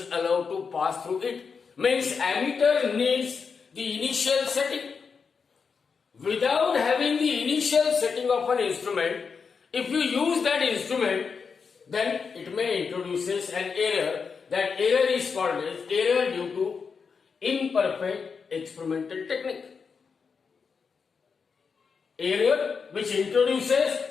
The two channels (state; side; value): quieter; right; 5.6 dB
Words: allowed to pass through it. Means ammeter needs the initial setting. Without having the initial setting of an instrument, if you use that instrument, then it may introduces an error. That error is called as error due to imperfect experimental technique. Error which introduces